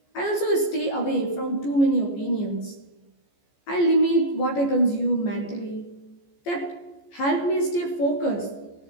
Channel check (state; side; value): late; right; 14 ms